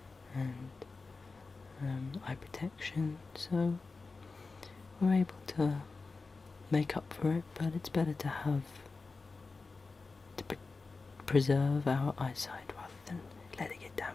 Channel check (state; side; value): quieter; right; 4.0 dB